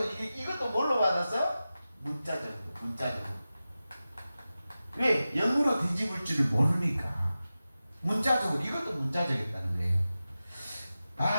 이것도 뭘로 받았어? 문자적으로. 왜? 영으로 뒤집을 줄을 모르니까. 문자적으로 이것도 문자적이었다는 거예요.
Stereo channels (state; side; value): inverted; both; correlation -0.94